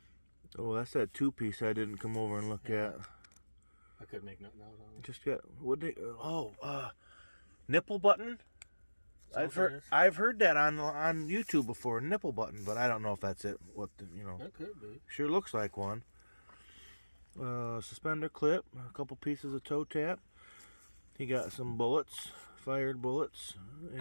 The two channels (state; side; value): inverted; both; correlation -1.00